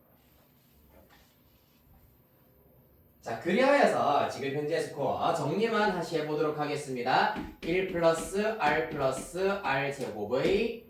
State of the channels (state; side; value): identical; both; correlation 1.00